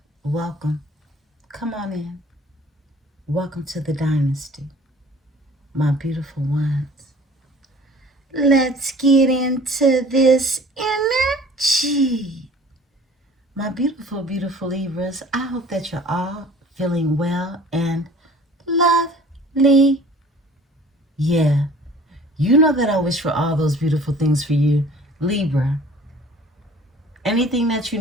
Welcome. Come on in. Welcome to the dynasty, my beautiful ones. Let's get into this energy. My beautiful, beautiful Libras, I hope that you're all feeling well and lovely. Yeah, you know that I wish for all those beautiful things for you, Libra. Anything that you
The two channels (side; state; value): both; normal; correlation 0.49